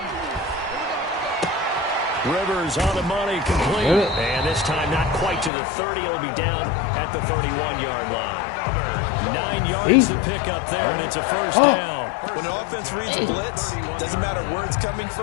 Rivers on the money, complete. And this time not quite to the 30. It'll be down at the 31-yard line. 9 yards to pick up there, and it's a first down. When an offense reads a blitz, doesn't matter where it's coming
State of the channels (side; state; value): right; drops out; at 5.5 s